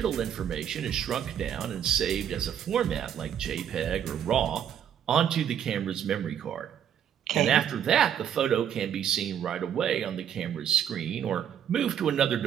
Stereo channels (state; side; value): quieter; left; 9.2 dB